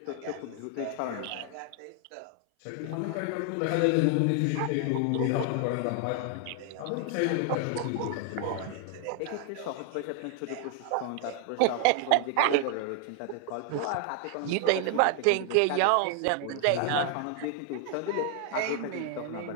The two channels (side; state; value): both; different; correlation 0.00